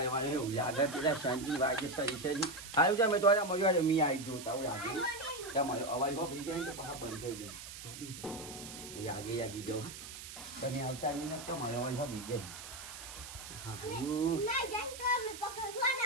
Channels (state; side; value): noise; right; hiss, 12 dB below the sound